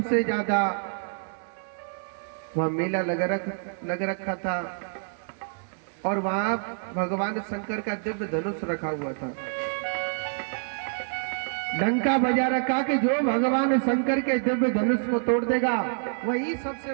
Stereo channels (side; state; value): left; silent; 60 dB below the other